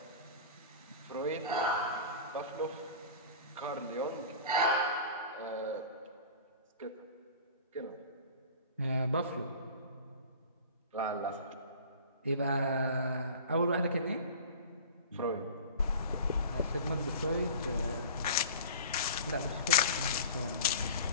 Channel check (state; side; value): inverted; both; correlation -0.38